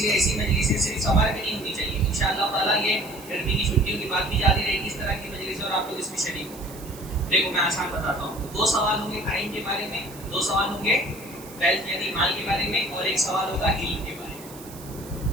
ایسی مجلسیں صرف سمر میں نہیں ہونی چاہیے۔ انشاءاللہ تعالیٰ یہ گرمی کی چھٹیوں کی بات بھی جاری رہے گی اس طرح کی مجلس، اور آپ لوگ اس میں شریک ہوں گے۔ دیکھو میں آسان بتاتا ہوں، 2 سوال ہوں گے ٹائم کے بارے میں، 2 سوال ہوں گے ویلتھ یعنی مال کے بارے میں، اور 1 سوال ہوگا علم کے بارے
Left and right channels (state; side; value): noise; right; hiss, 18 dB below the sound